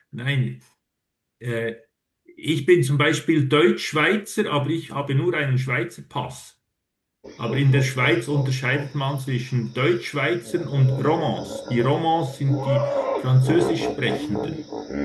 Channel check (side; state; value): both; identical; correlation 1.00